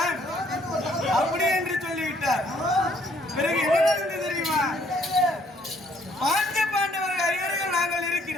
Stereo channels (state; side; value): normal; both; correlation 0.65